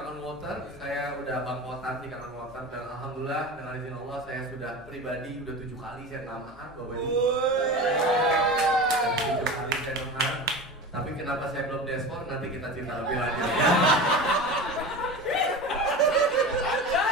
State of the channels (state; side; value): normal; both; correlation 0.30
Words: Water, saya udah bangkotan di Kangen Water, dan alhamdulillah dengan izin Allah saya sudah pribadi udah 7 kali saya namahan Bapak Ibu. 7 kali saya namahan. Tapi kenapa saya belum deskor, nanti kita cerita lebih lanjut ya.